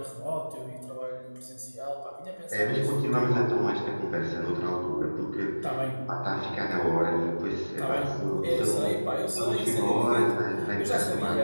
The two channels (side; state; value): both; inverted; correlation -1.00